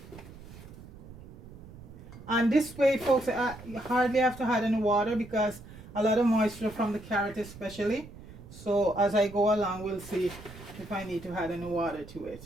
And this way, folks, you hardly have to add any water because a lot of moisture from the carrot especially. So as I go along, we'll see if I need to add any water to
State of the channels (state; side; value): noise; right; rumble, 17 dB below the sound